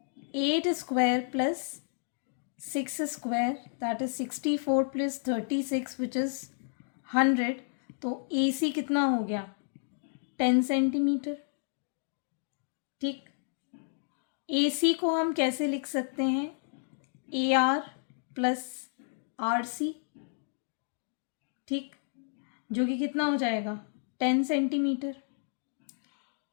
8 square plus 6 square, that is 64 plus 36 which is 100। तो ए सी कितना हो गया? 10 सेंटीमीटर, ठीक। ए सी को हम कैसे लिख सकते हैं? A R plus R C, ठीक, जो कि कितना हो जाएगा? 10 सेंटीमीटर।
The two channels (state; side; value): silent; right; digital silence